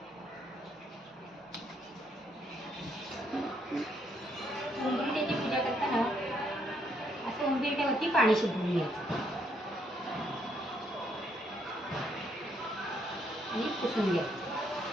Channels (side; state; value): both; normal; correlation 0.72